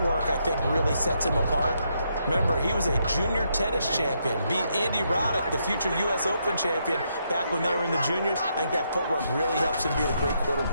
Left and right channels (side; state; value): both; inverted; correlation -0.78